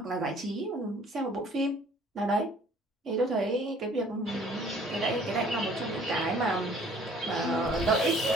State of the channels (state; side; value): normal; both; correlation 0.55